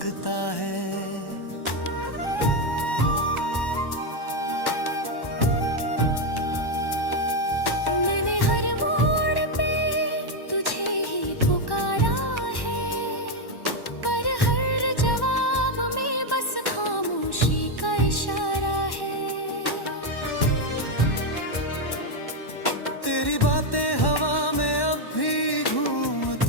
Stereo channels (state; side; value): late; right; 1.1 ms